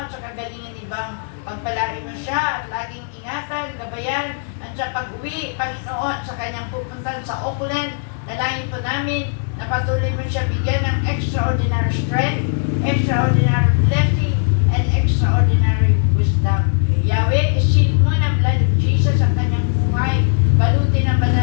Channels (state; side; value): silent; right; digital silence